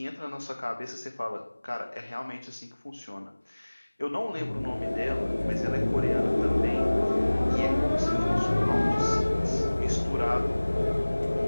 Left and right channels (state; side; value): inverted; both; correlation -1.00